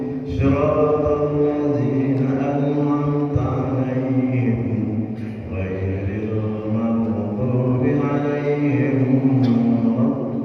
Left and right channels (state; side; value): identical; both; correlation 1.00